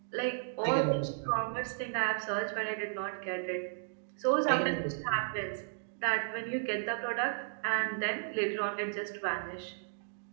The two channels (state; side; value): silent; left; digital silence